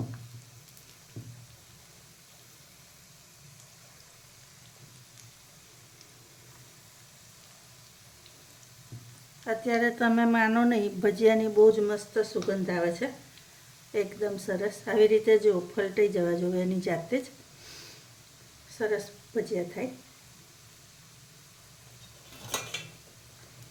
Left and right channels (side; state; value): both; identical; correlation 1.00